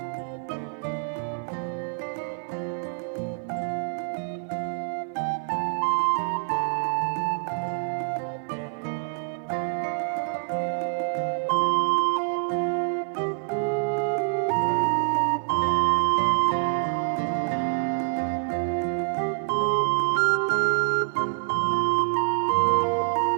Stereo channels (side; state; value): left; silent; digital silence